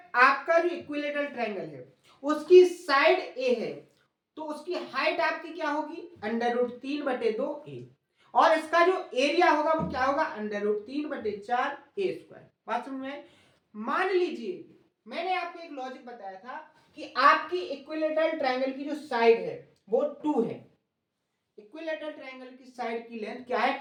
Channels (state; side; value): identical; both; correlation 1.00